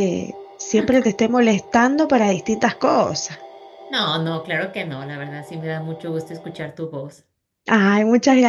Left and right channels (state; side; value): identical; both; correlation 1.00